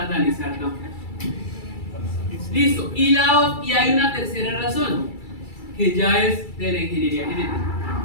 tampoco. Listo. Y hay una tercera razón, que ya es de la ingeniería genética.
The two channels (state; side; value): late; right; 2.3 ms